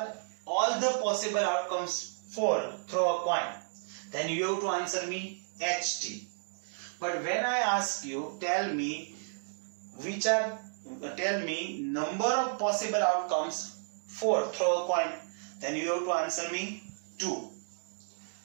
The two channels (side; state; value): left; silent; digital silence